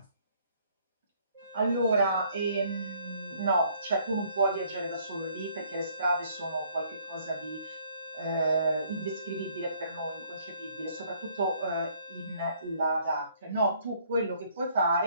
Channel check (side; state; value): both; inverted; correlation -0.63